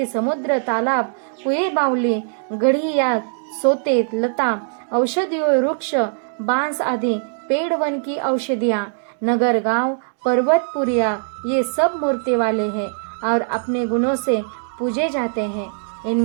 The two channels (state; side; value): silent; left; digital silence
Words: समुद्र, तालाब, कुएं, बावली, गढ़ी या सोते, लता, औषधियों, वृक्ष, बांस आदि पेड़, वन की औषधियां, नगर, गांव, पर्वत, पुरिया, ये सब मूर्ति वाले हैं और अपने गुणों से पूजे जाते हैं।